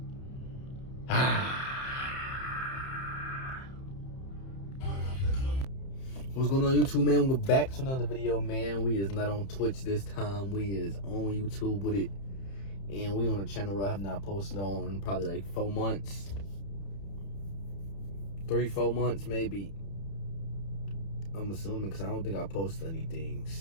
going on, YouTube, man? We're back to another video, man. We is not on Twitch this time. We is on YouTube with it. And we on a channel that I have not posted on in probably like 4 months. 3-4 months, maybe. I'm assuming, because I don't think I posted anything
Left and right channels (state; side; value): late; right; 30 ms